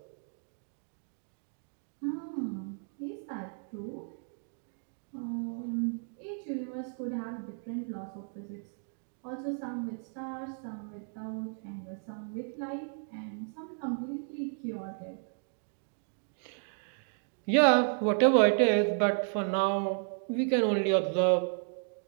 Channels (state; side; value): silent; left; 56 dB below the other